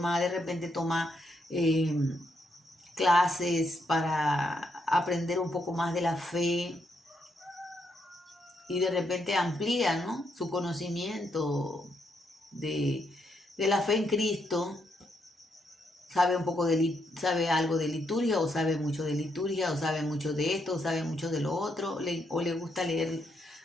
de repente toma clases para aprender un poco más de la fe y de repente amplía, ¿no?, su conocimiento de la fe en Cristo. Sabe sabe algo de liturgia, o sabe mucho de liturgia, o sabe mucho de esto, o sabe mucho de lo otro, o le gusta leer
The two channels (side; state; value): both; normal; correlation 0.78